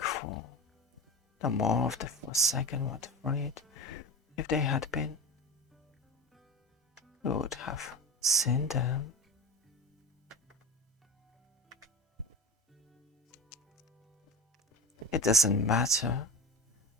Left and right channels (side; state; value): both; normal; correlation 0.27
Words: No more of the Forsaken were freed. If they had been, we would have seen them. It doesn't matter.